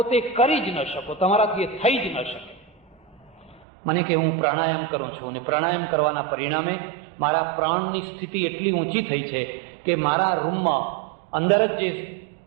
કરી જ ન શકો, તમારાથી એ થઈ જ ન શકે. મને કે હું પ્રાણાયામ કરું છું અને પ્રાણાયામ કરવાના પરિણામે મારા પ્રાણની સ્થિતિ એટલી ઊંચી થઈ છે કે મારા રૂમમાં અંદર જ જે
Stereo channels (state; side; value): drops out; left; at 3.7 s